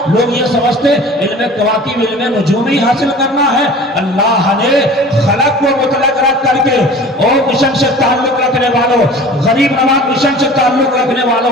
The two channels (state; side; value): normal; both; correlation 0.42